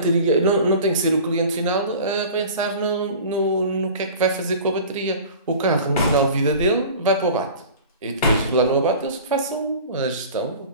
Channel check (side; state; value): both; inverted; correlation -0.40